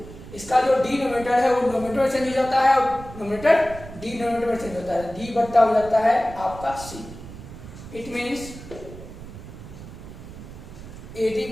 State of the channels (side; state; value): right; noise; rumble, 14 dB below the sound